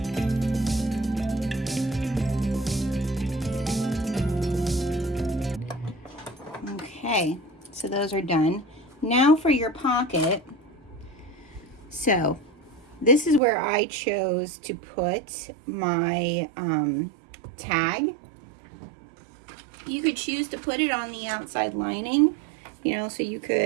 Okay, so those are done. Now for your pocket. So this is where I chose to put my tag. You could choose to put it on the outside lining, you know, so you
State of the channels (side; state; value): left; drops out; at 13.4 s